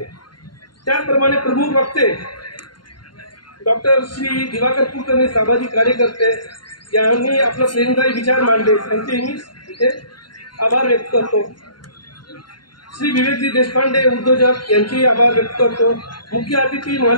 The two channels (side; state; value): right; late; 0.71 ms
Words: त्याचप्रमाणे प्रमुख वक्ते डॉक्टर श्री दिवाकर कुलकर्णी, सामाजिक कार्यकर्ते यांनी आपला प्रेरणादायी विचार मांडले, त्यांचेही मी इथे आभार व्यक्त करतो। श्री विवेकजी देशपांडे, उद्योजक, यांचेही आभार व्यक्त करतो। मुख्य अतिथी